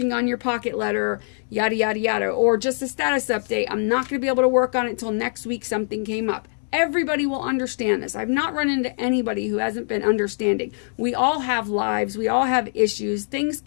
on your pocket letter, yada, yada, yada. Or just a status update. I'm not going to be able to work on it until next week. Something came up. Everybody will understand this. I've not run into anybody who hasn't been understanding. We all have lives. We all have issues. Things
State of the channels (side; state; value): right; silent; 63 dB below the other